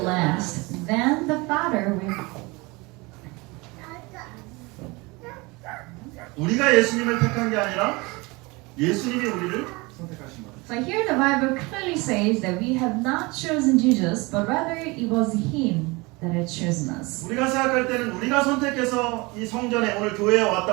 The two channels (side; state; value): left; quieter; 25.1 dB